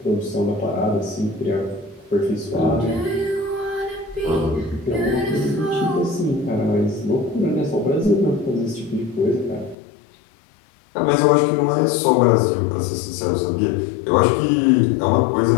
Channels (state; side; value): drops out; right; at 9.8 s